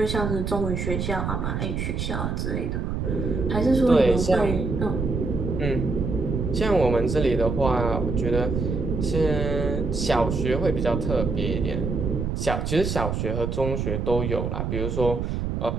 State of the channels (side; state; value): right; noise; rumble, 2 dB below the sound